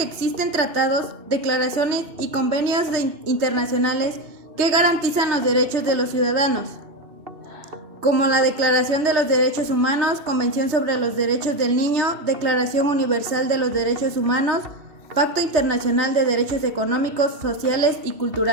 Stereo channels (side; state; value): left; late; 3.3 ms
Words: existen tratados, declaraciones y convenios internacionales que garantizan los derechos de los ciudadanos, como la Declaración de los Derechos Humanos, Convención sobre los Derechos del Niño, Declaración Universal de los Derechos Humanos, Pacto Internacional de Derechos Económicos, Sociales y